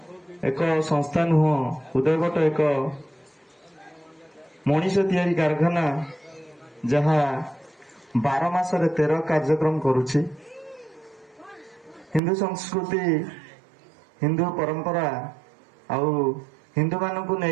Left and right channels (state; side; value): drops out; left; at 12.2 s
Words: ଏକ ସଂସ୍ଥା ନୁହଁ, ଉଦୟବଟ ଏକ ମଣିଷ ତିଆରି କାରଖାନା, ଯାହା 12 ମାସରେ 13 କାର୍ଯ୍ୟକ୍ରମ କରୁଛି। ହିନ୍ଦୁ ସଂସ୍କୃତି, ହିନ୍ଦୁ ପରମ୍ପରା ଆଉ ହିନ୍ଦୁମାନଙ୍କୁ